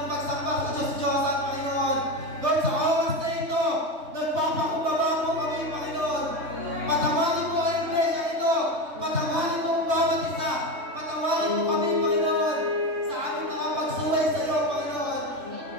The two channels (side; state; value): left; late; 3.2 ms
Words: pagsamba sa Diyos-Diyosan, Panginoon. Lord, sa oras na ito, nagpapakumbaba po kami, Panginoon. Patawarin po ang iglesia ito. Patawarin po ang bawat isa. Patawarin po kami, Panginoon, sa aming mga pagsuway sa iyo, Panginoon.